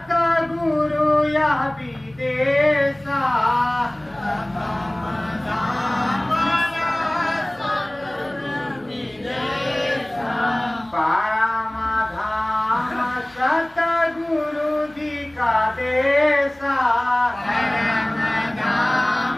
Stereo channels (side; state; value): left; noise; hum, 28 dB below the sound